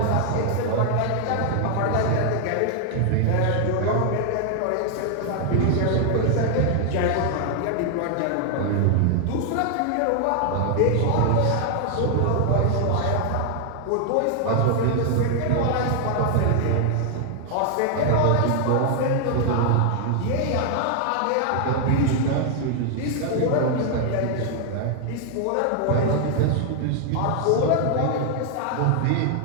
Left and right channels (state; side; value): different; both; correlation 0.00